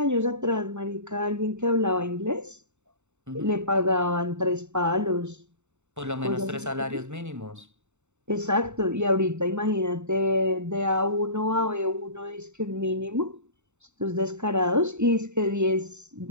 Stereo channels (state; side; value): late; left; 0.83 ms